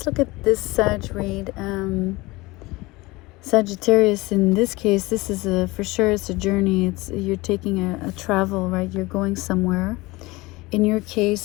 look at this Sag read. Sagittarius, in this case, this is for sure it's a journey. You're taking a travel, right? You're going somewhere. In your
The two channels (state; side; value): quieter; right; 21.9 dB